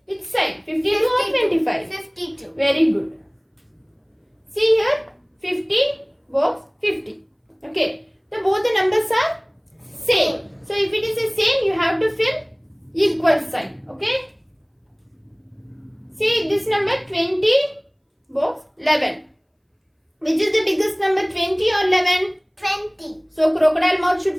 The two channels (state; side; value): identical; both; correlation 1.00